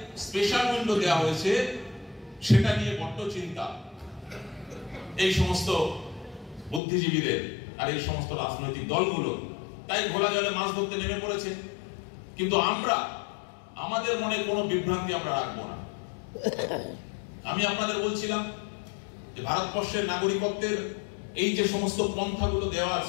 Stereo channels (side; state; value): right; drops out; at 6.8 s